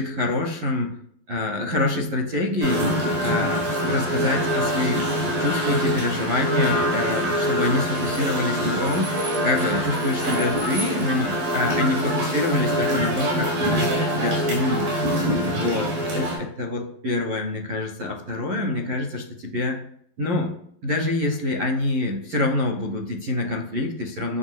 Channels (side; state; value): left; late; 11 ms